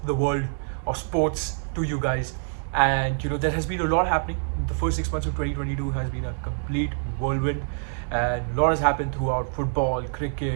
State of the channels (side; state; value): left; silent; digital silence